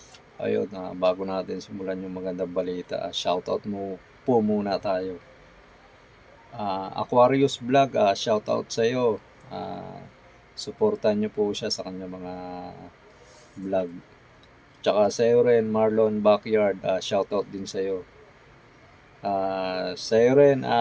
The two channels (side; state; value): both; identical; correlation 1.00